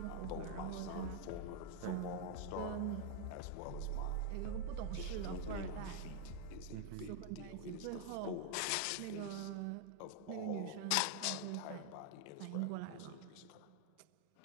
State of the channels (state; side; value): different; both; correlation 0.00